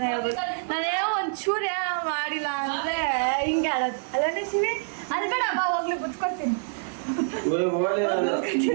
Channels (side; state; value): left; silent; digital silence